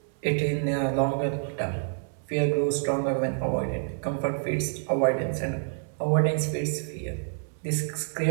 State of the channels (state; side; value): silent; left; digital silence